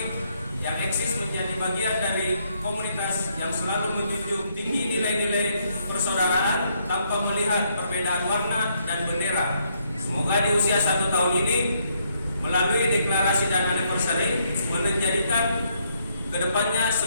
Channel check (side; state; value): both; inverted; correlation -0.73